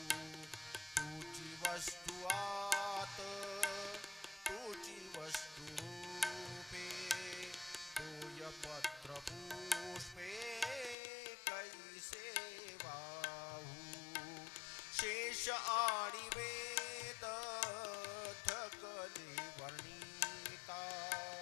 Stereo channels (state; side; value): drops out; right; at 11.0 s